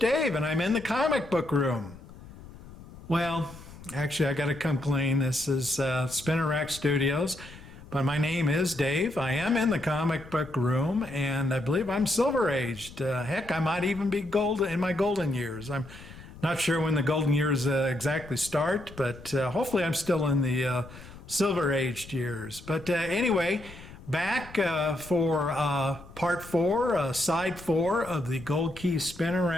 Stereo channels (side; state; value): left; noise; rumble, 18 dB below the sound